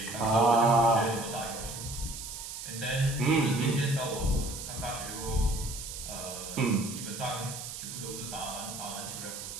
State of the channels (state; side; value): noise; right; hiss, 9 dB below the sound